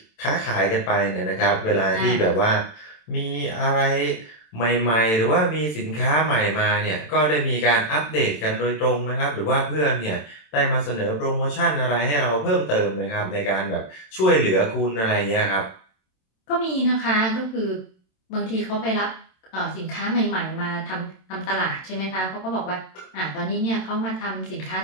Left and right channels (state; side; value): late; right; 27 ms